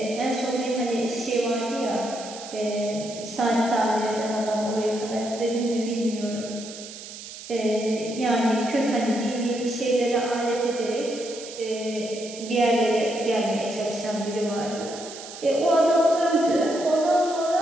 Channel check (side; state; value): right; noise; hiss, 13 dB below the sound